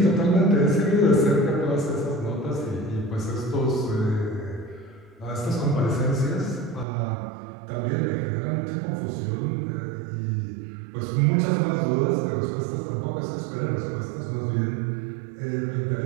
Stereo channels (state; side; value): drops out; left; at 6.9 s